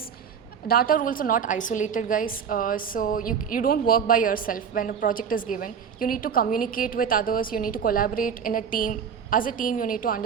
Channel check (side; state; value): left; quieter; 7.2 dB